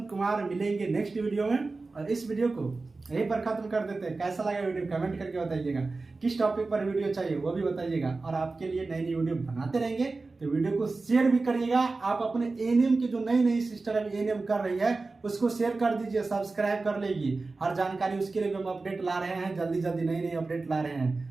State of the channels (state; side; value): quieter; left; 3.7 dB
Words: कुमार मिलेंगे नेक्स्ट वीडियो में। और इस वीडियो को यहीं पर खत्म कर देते हैं। कैसा लगा वीडियो कमेंट करके बताइएगा, किस टॉपिक पर वीडियो चाहिए वो भी बताइएगा। और आपके लिए नई नई वीडियो बनाते रहेंगे, तो वीडियो को शेयर भी करिएगा। आप अपने एएनएम के जो नई नई सिस्टर अभी एएनएम कर रही है उसको शेयर कर दीजिए, सब्सक्राइब कर लेगी। हर जानकारी उसके लिए भी हम अपडेट ला रहे हैं, जल्दी जल्दी नई नई अपडेट ला रहे